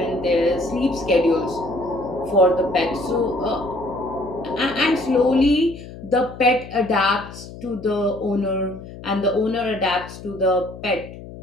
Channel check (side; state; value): left; noise; hum, 14 dB below the sound